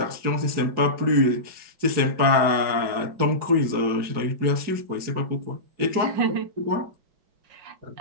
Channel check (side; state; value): left; late; 4.8 ms